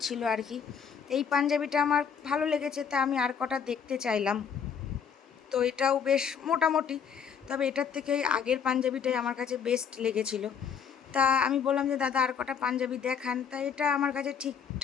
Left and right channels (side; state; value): right; quieter; 7.2 dB